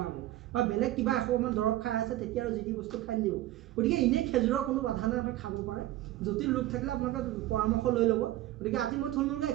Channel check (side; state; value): left; quieter; 15.2 dB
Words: হ'ব বা বেলেগ কিবা এসোপামান দৰৱ খাই আছে তেতিয়া আৰু যি টি বস্তু খাই দিব গতিকে এনেই খেজুৰৰ কোনো বাধা নাই আপুনি খাব পাৰে জটিল ৰোগ থাকিলে আপোনালোকে পৰামৰ্শ লৈ ল'ব গতিকে আজি মই থুলমূলকৈ